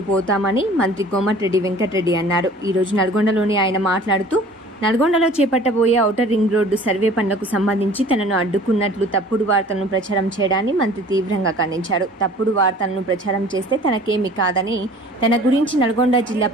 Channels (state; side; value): normal; both; correlation 0.48